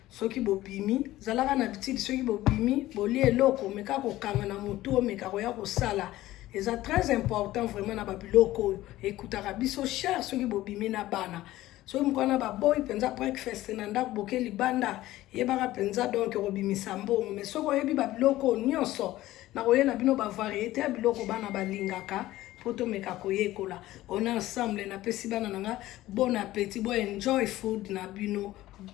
soki bobimi zalaka na bitidi soki bobimi bolia eloko omeka kokanga na motu omeka koya kosala eza très important vraiment na babiloko oyo ekutaka biso cher soki bobimi na bana soki mokwana baboyi mpenza breakfast na ndako boke libanda yebaka mpenza donc kobimisa mbongo mais soki oyebi babiloko nyonso na koyela bino bavariété ya biloko bana balingaka po tomeka koyekola on ensemble napesi bana nanga bon appétit bo enjoy food na bino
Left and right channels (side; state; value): right; quieter; 15.9 dB